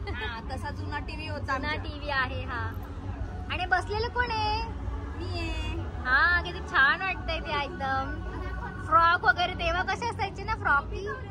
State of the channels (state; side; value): identical; both; correlation 1.00